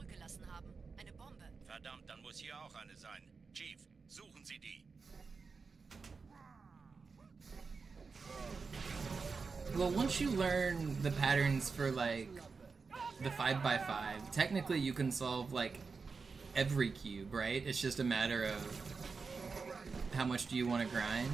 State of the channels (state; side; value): quieter; left; 4.8 dB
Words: haben. Eine Bombe. Verdammt, dann muss hier auch eine sein. Chief, suchen Sie die. Well, once you learn the patterns for like the 5x5, technically you can solve like every cube, right? It's just a matter of how much do you want to grind.